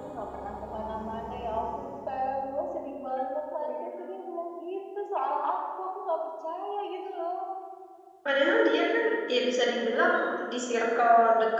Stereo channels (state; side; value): identical; both; correlation 1.00